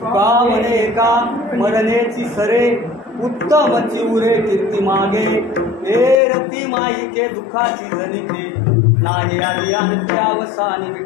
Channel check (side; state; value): right; drops out; at 6.2 s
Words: म्हणे का मरणेची सरे उत्तम चिवरे कीर्ती मागे हे रती माईके दुःखाची जनिते नाही आदी अंत्य अवसानी